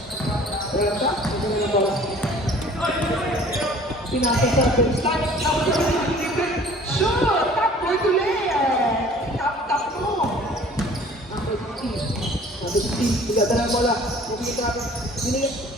Wala ka? Ito na yung bola. Pinasa sa baseline. Shoot! Top boy ulit! Tap mo! Number 15. Number 15. Bigadala ang bola. Binigay.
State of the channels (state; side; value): normal; both; correlation 0.50